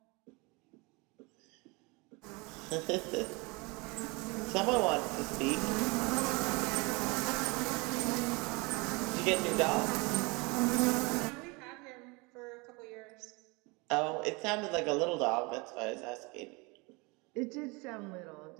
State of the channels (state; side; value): quieter; left; 27.2 dB